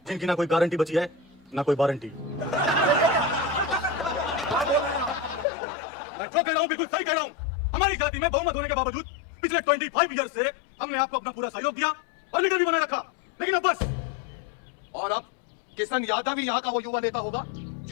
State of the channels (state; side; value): drops out; right; at 5.5 s